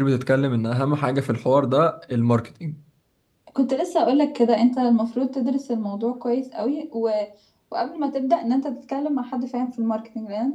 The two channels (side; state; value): both; identical; correlation 1.00